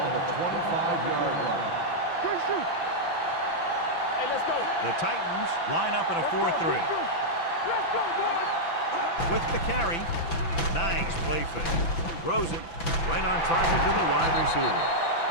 the 25-yard line. Hey, let's go. The Titans line up in a 4-3. Let's go, boys. With the carry. Nice play fake. Throws it right on target to the wide receiver.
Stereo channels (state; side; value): late; right; 6.0 ms